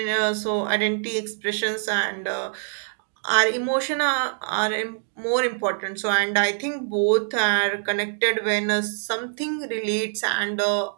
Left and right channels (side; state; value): left; silent; digital silence